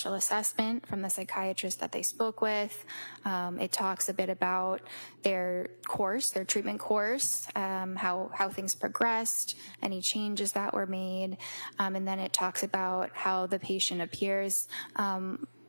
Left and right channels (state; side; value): inverted; both; correlation -1.00